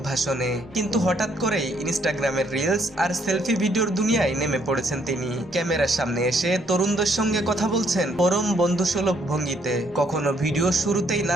ভাষণে, কিন্তু হঠাৎ করেই ইনস্টাগ্রামের রিলস আর সেলফি ভিডিওর দুনিয়ায় নেমে পড়েছেন তিনি। ক্যামেরার সামনে এসে তরুণদের সঙ্গে কথা বলছেন পরম বন্ধুসুলভ ভঙ্গিতে, কখনো ভিডিও শুরুতেই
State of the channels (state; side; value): normal; both; correlation 0.69